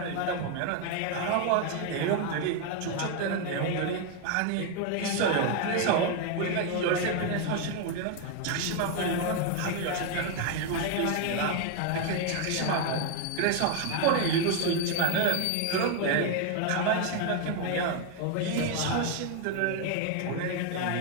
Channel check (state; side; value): different; both; correlation 0.01